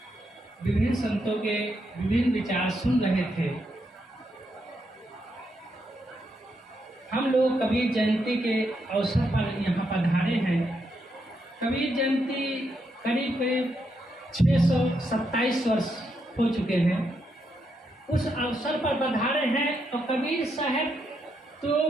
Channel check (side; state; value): both; normal; correlation 0.80